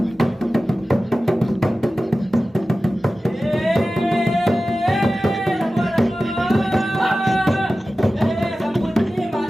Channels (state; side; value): normal; both; correlation 0.95